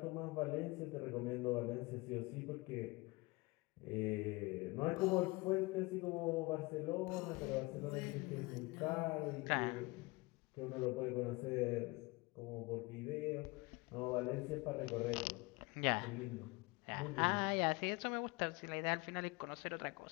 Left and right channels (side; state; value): right; quieter; 24.3 dB